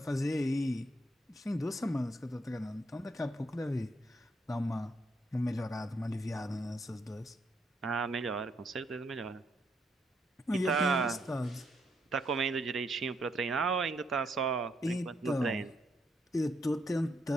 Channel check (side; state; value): both; normal; correlation 0.75